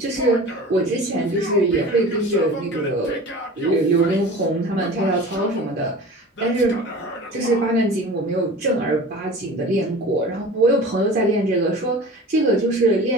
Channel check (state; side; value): normal; both; correlation 0.38